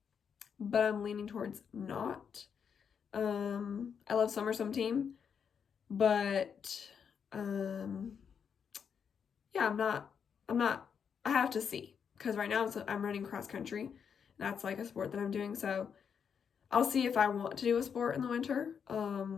but I'm leaning towards not. I love summer swim team, but yeah, I'm not, I have to see, because right now I'm running cross country. That's like a sport that I'm doing, so I'll see if I want to do a sport in the winter,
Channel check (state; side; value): quieter; right; 7.0 dB